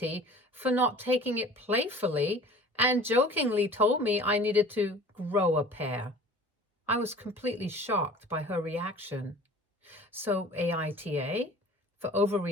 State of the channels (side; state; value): both; normal; correlation 0.44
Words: for not taking it playfully, and jokingly told me I needed to grow a pair. I was completely shocked by her reaction. So AITA for